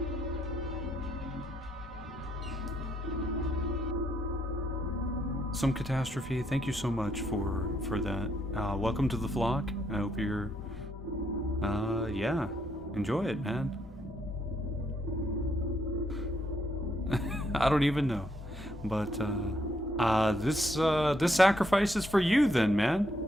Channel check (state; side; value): normal; both; correlation 0.75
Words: some catastrophe. Thank you so much for that. Welcome to the flock. I hope you're, yeah, enjoy it, man. I don't even know, but this sacrifice is for you, then, man.